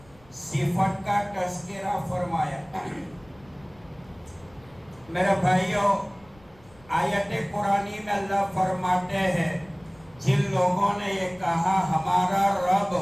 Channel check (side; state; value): left; noise; rumble, 27 dB below the sound